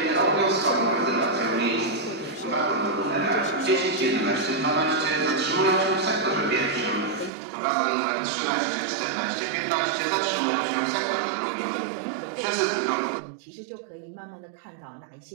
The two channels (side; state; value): left; drops out; at 7.3 s